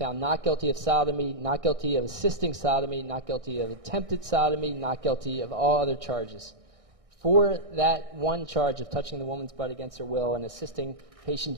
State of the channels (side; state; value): left; late; 1.6 ms